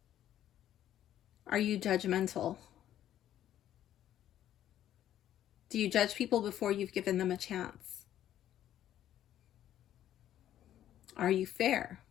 Are you judgmental? Do you judge people before you've given them a chance? Are you fair?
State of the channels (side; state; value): right; quieter; 11.7 dB